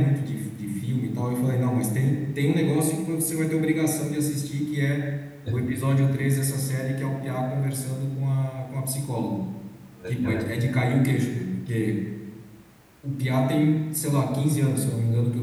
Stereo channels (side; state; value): both; identical; correlation 1.00